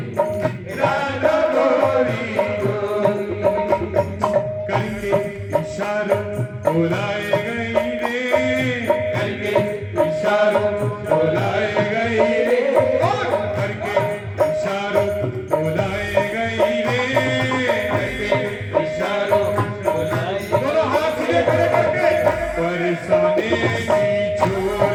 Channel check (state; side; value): identical; both; correlation 1.00